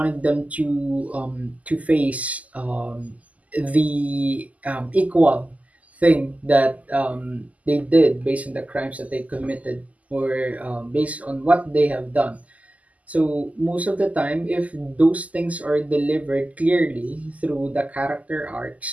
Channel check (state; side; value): late; left; 0.073 ms